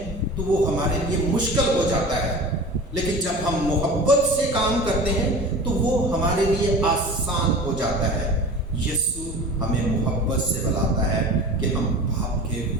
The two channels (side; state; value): both; normal; correlation 0.36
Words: तो वो हमारे लिए मुश्किल हो जाता है, लेकिन जब हम मोहब्बत से काम करते हैं तो वो हमारे लिए आसान हो जाता है। यीशु हमें मोहब्बत से बुलाता है कि हम बाप के